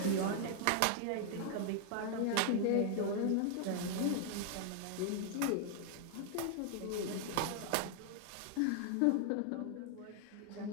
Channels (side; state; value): both; different; correlation 0.00